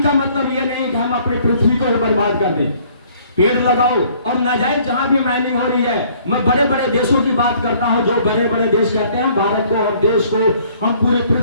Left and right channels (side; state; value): both; inverted; correlation -0.59